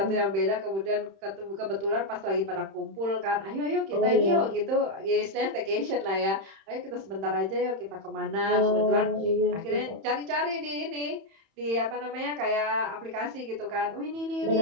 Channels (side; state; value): left; late; 31 ms